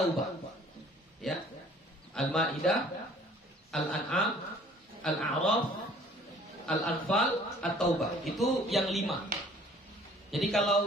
Ya. Al-Maidah, Al-An'am, Al-A'raf, Al-Anfal, At-Taubah. Itu yang 5. Jadi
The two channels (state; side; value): normal; both; correlation 0.54